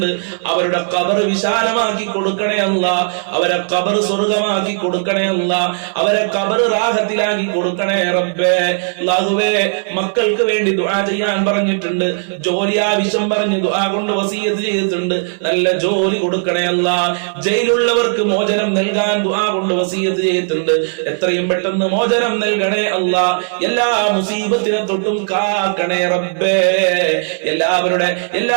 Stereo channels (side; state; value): left; silent; 58 dB below the other